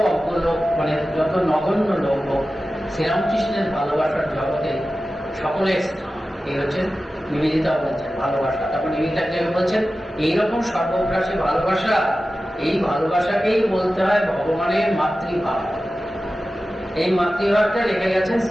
অজ্ঞ লোক, মানে যত নগণ্য লোক হোক, শ্রীরামকৃষ্ণের ভালোবাসার জগতে সকলের স্থান। এই হচ্ছে নিবেদিতা বলছেন ভালোবাসা। তখন নিবেদিতা বলছেন এইরকম সর্বগ্রাসী ভালোবাসা, এই ভালোবাসাকেই বলতে হয় ভগবানের মাতৃভাব। এই মাতৃভাবটা রেখে গেছেন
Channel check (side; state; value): both; normal; correlation 0.94